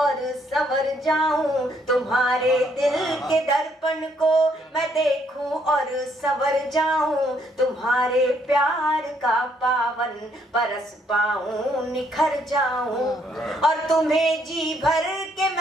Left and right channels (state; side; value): normal; both; correlation 0.70